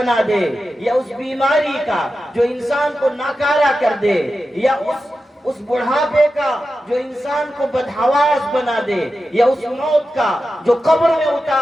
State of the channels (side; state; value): both; normal; correlation 0.92